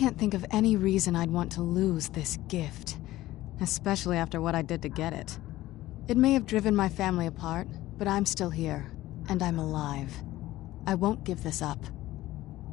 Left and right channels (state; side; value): quieter; right; 16.1 dB